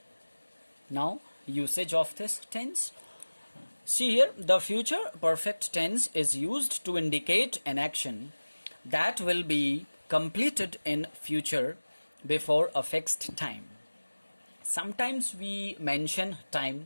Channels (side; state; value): both; inverted; correlation -1.00